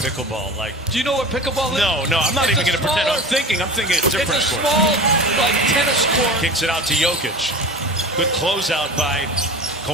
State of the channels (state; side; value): normal; both; correlation 0.34